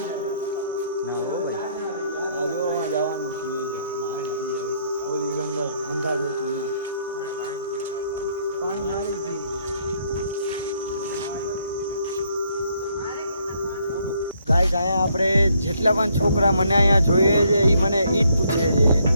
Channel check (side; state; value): both; inverted; correlation -0.70